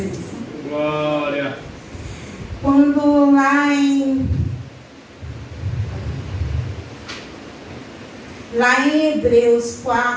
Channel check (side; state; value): both; identical; correlation 1.00